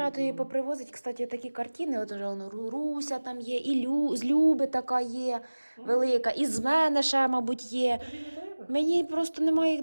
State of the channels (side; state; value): both; inverted; correlation -1.00